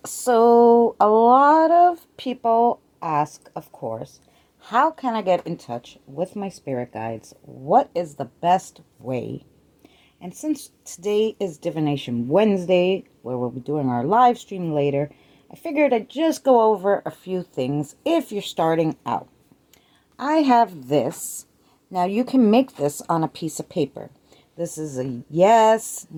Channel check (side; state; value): both; identical; correlation 1.00